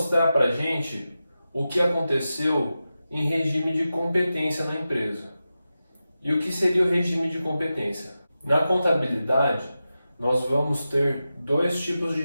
para a gente o que aconteceu em regime de competência na empresa. E o que seria o regime de competência? Na contabilidade, nós vamos ter dois tipos de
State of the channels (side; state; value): both; inverted; correlation -0.92